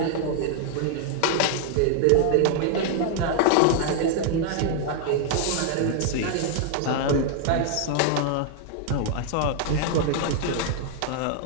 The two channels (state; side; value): different; both; correlation 0.00